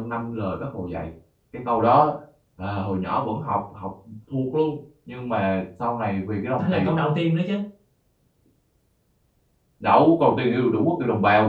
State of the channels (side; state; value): both; identical; correlation 1.00